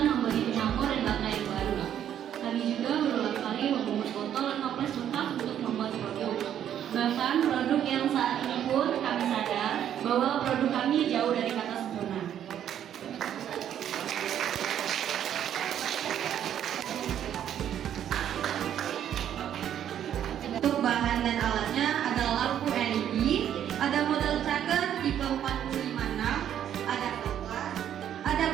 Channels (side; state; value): left; quieter; 10.1 dB